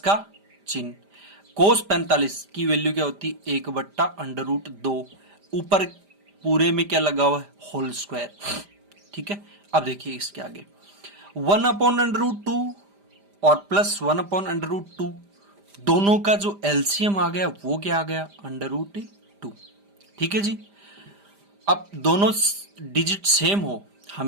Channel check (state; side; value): late; left; 5.0 ms